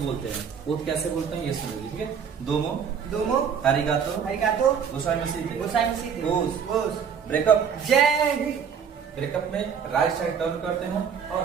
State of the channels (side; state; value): left; quieter; 7.2 dB